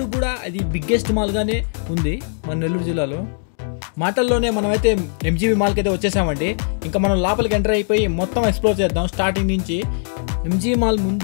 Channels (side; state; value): right; silent; digital silence